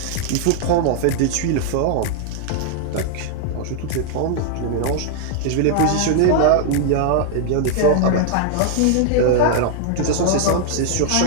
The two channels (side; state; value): both; different; correlation -0.01